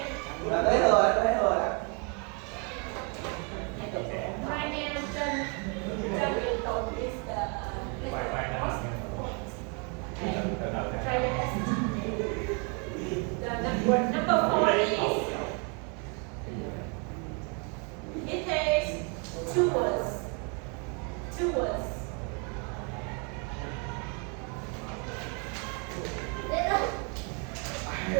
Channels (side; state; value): left; quieter; 35.8 dB